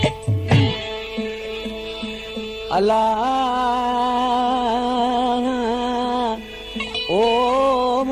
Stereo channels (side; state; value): both; identical; correlation 1.00